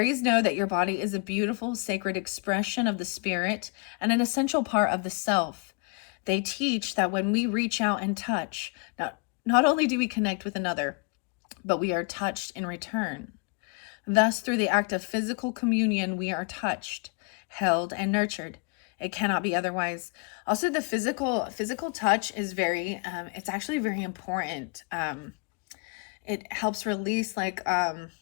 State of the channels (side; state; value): right; quieter; 34.1 dB